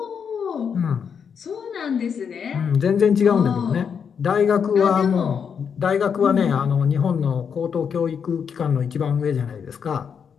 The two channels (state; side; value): quieter; right; 6.9 dB